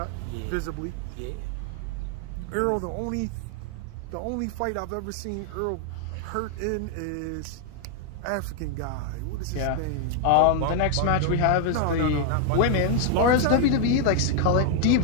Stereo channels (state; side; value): different; both; correlation 0.00